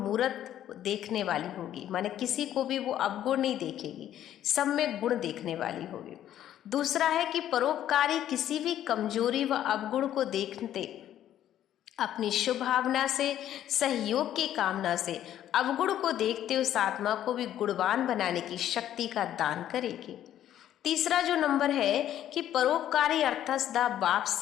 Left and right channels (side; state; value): right; quieter; 11.5 dB